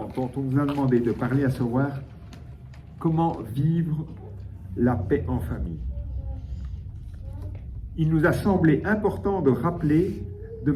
nous a demandé de parler, à savoir comment vivre la paix en famille. Il nous a semblé important de rappeler de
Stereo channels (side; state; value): both; identical; correlation 1.00